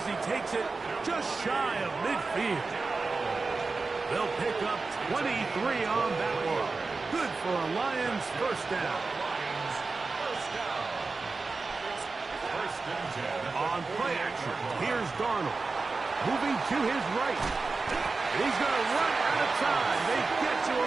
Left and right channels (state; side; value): quieter; left; 4.0 dB